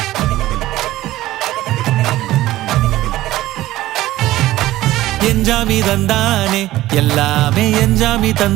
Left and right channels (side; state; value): left; quieter; 15.8 dB